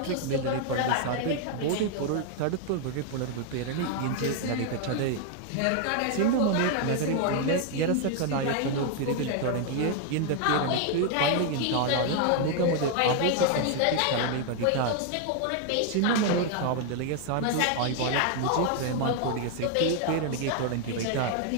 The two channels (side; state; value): both; different; correlation 0.00